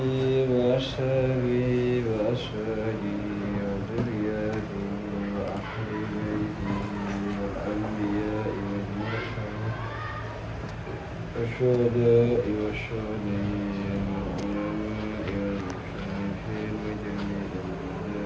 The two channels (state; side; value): identical; both; correlation 1.00